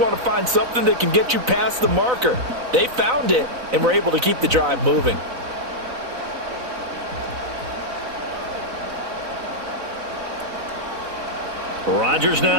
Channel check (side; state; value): left; late; 4.0 ms